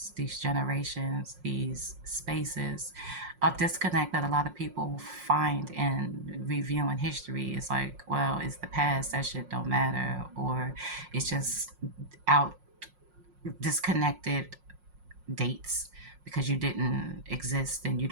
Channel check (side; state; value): left; late; 5.5 ms